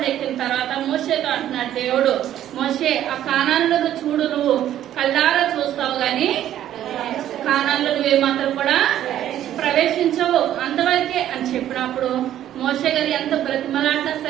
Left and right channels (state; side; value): quieter; left; 11.7 dB